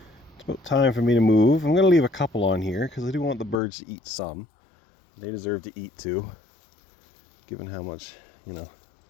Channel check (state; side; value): drops out; right; at 3.6 s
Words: It's about time for me to move. I'm going to leave a couple on here because I do want the birds to eat some. They deserve to eat too, given how much, you know,